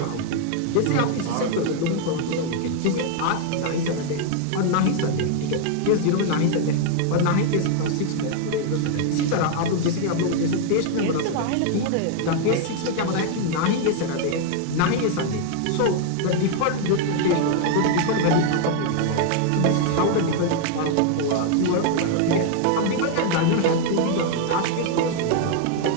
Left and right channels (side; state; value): both; different; correlation 0.00